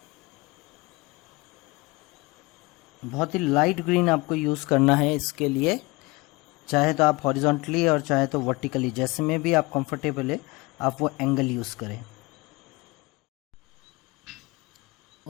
बहुत ही लाइट ग्रीन आपको यूज़ करना है इसके लिए। चाहे तो आप हॉरिजॉन्टली और चाहे तो वर्टिकली, जैसे में भी आप कंफर्टेबल है आप वो एंगल यूज़ करें।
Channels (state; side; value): quieter; right; 24.3 dB